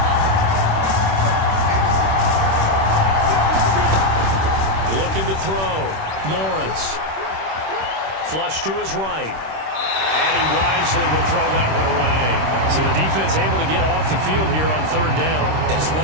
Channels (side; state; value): left; late; 26 ms